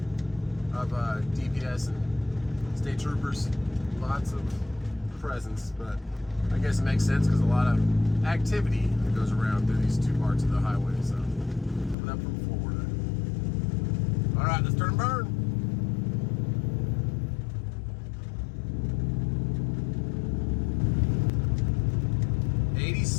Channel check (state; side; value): drops out; right; at 12.0 s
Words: of DPS and state troopers, lots of presence. But I guess it makes sense because a lot of activity that goes around through these two parts of the highway. So coming up from Florida. All right, let's turn and burn.